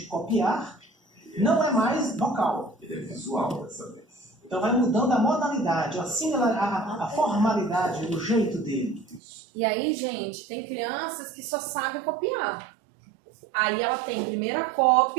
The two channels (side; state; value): left; drops out; at 9.2 s